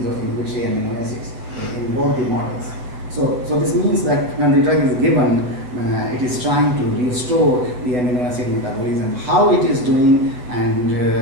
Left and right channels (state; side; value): late; left; 8.1 ms